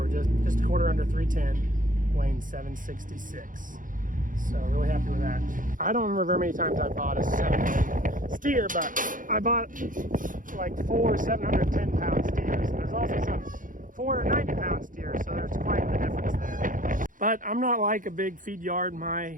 just a quarter under 310. Weighing 766. So really happy with that. I don't remember very many times I bought a 7 steer, but I bought like 4 710-pound steers. And there's also some 490-pound steers, so there's quite the difference there. But I'm not like a big feed yard.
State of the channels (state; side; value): late; left; 0.39 ms